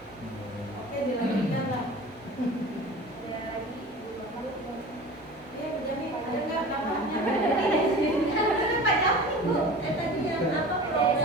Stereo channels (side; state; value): both; normal; correlation 0.38